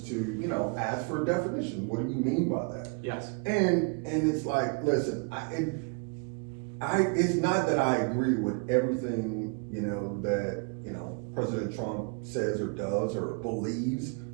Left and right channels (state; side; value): quieter; left; 34.2 dB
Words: to, you know, ask for a definition. What do you mean by that? Yes. And it's like, listen, it's not that I agree with everything, you know, that, you know, President Trump says or does or believes,